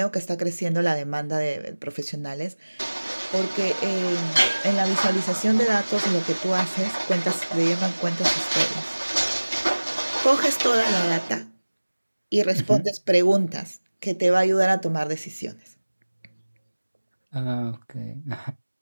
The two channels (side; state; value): both; inverted; correlation -1.00